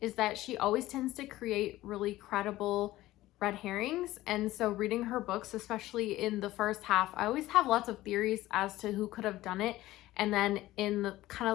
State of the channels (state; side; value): quieter; right; 16.4 dB